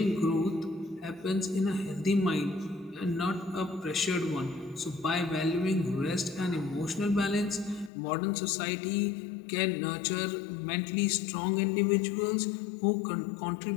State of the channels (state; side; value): drops out; right; at 7.9 s